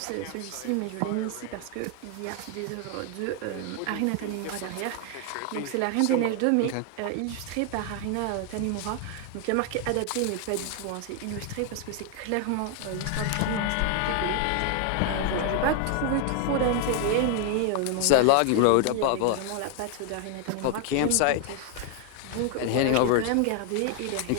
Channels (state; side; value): different; both; correlation 0.00